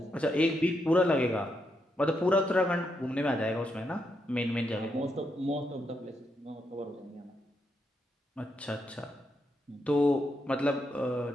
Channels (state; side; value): normal; both; correlation 0.81